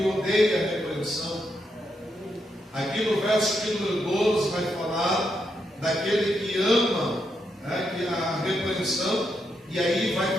odeia a repreensão. Aqui no verso de número 12 vai falar daquele que ama a repreensão, e aí vai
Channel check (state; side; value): normal; both; correlation 0.81